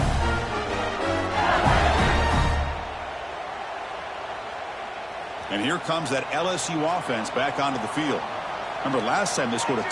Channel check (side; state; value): both; identical; correlation 1.00